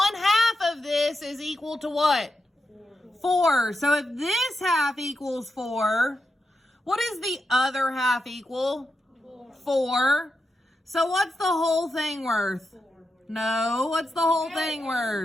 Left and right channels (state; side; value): normal; both; correlation 0.87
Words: of this is equal to what? 4. So if this half equals 4, what is the other half equal? 4. So what's the whole thing worth? No, what's the whole thing